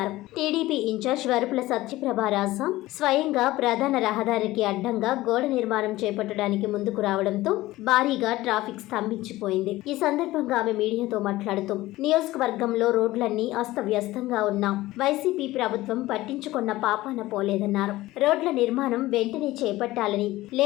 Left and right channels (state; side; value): quieter; right; 17.5 dB